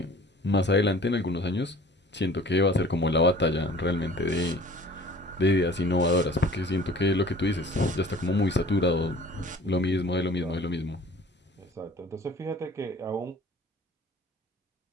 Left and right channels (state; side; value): normal; both; correlation 0.48